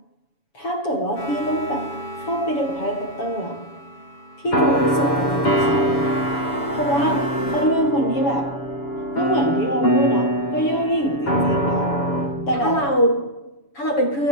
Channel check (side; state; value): right; late; 7.1 ms